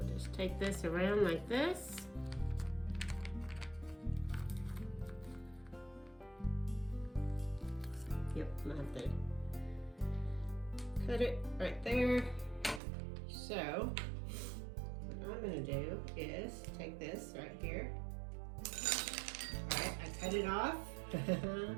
just take this around like this. Yep, I'm going to have to cut it right there. So what I'm going to do is take this right here. Alright, I cut it off.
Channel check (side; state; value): left; drops out; at 12.8 s